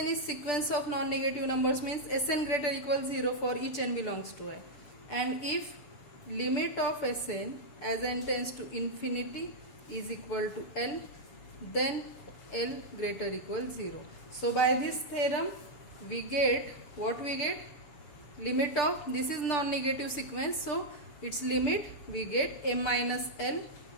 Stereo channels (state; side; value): late; right; 6.8 ms